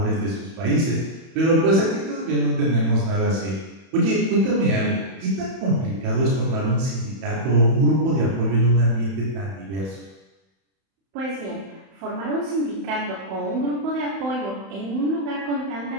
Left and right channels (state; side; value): late; left; 31 ms